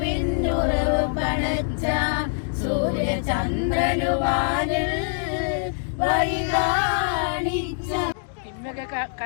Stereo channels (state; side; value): silent; right; digital silence